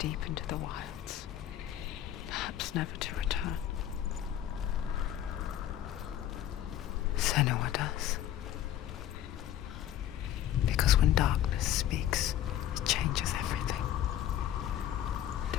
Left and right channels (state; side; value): quieter; right; 11.6 dB